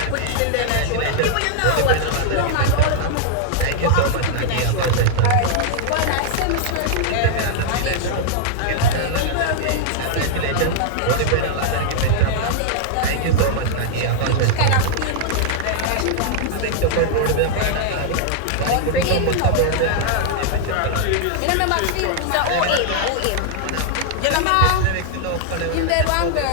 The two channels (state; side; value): different; both; correlation -0.01